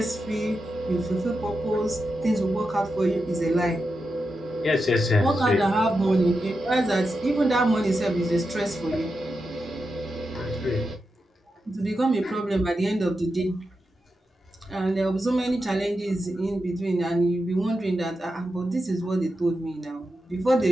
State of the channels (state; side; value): normal; both; correlation 0.88